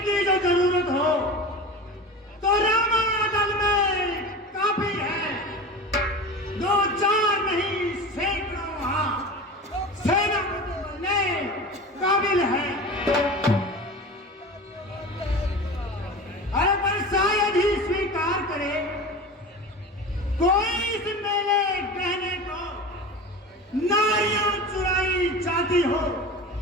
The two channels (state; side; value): normal; both; correlation 0.32